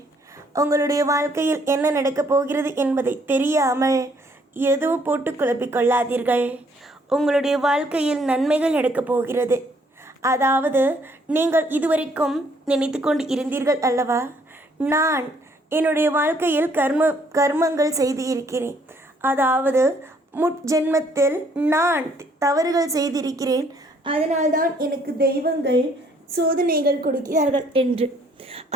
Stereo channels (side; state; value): both; normal; correlation 0.65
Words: உங்களுடைய வாழ்க்கையில் என்ன நடக்கப் போகிறது என்பதை தெரியாமல் எதுவும் போட்டு குழப்பிக்கொள்ளாதீர்கள். உங்களுடைய வாழ்க்கையில் நன்மைகள் நடக்கப் போகிறது. அதாவது நீங்கள் இதுவரைக்கும் நினைத்து கொண்டு இருந்தீர்கள் அல்லவா, நான் என்னுடைய வாழ்க்கையில் கர்மங்கள் செய்து இருக்கிறேன். அதாவது முற்ஜென்மத்தில் நான் தவறுகள் செய்திருக்கிறேன், அதனால்தான் எனக்கு தெய்வங்கள் சோதனைகள் கொடுக்கிறார்கள் என்று.